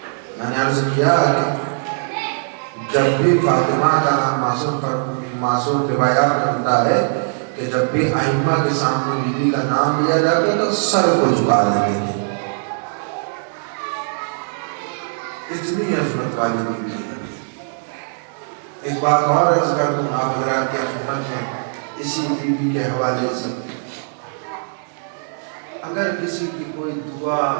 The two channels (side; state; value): left; silent; 66 dB below the other